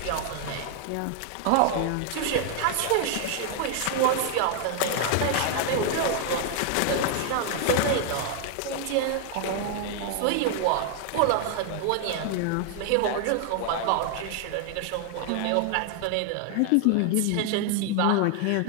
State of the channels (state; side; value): different; both; correlation 0.00